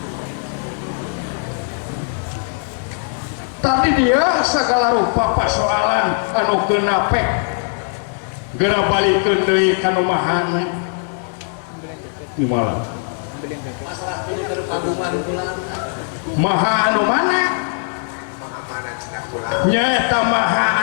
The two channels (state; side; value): silent; right; 64 dB below the other